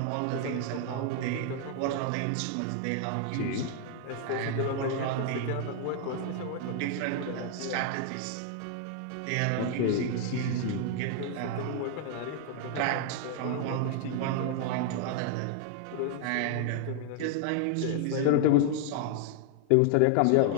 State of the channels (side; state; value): both; different; correlation 0.00